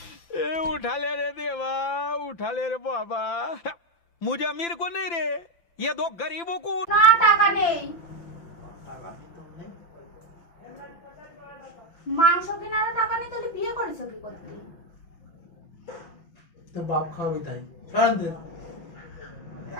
ए उठा ले रे देवा, उठा ले रे बाबा। मुझे अमीर को नहीं रे, ये दो गरीबों को। না টাকা নেই। মাংস কেনার টাকা নেই, তাহলে বিয়ে করেছো কি করতে? তোর বাপ খাওয়াবি তাই শান্তি।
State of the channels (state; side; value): late; right; 5.9 ms